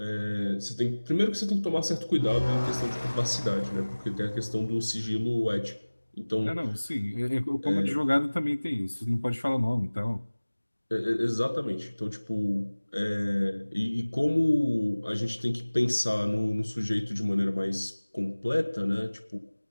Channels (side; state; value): both; inverted; correlation -1.00